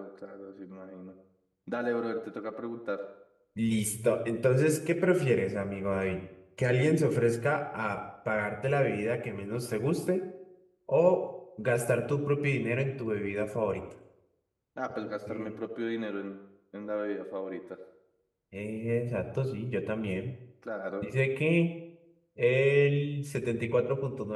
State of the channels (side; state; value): both; identical; correlation 1.00